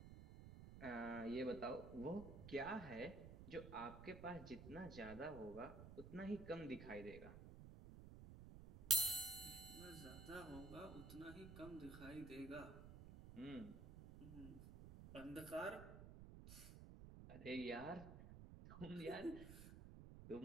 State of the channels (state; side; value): noise; right; rumble, 11 dB below the sound